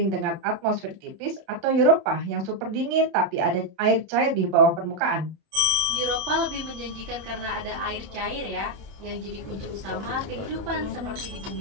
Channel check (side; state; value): left; late; 30 ms